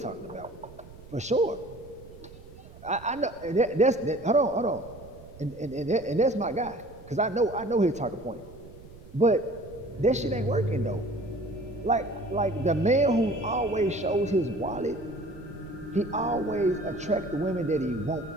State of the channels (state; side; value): noise; right; rumble, 19 dB below the sound